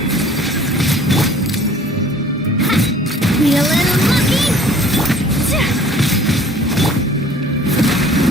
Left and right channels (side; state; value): both; normal; correlation 0.52